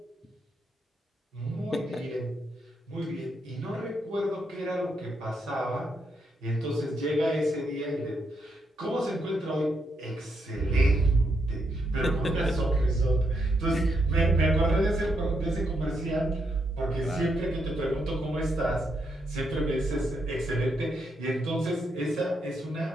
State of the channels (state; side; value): normal; both; correlation 0.79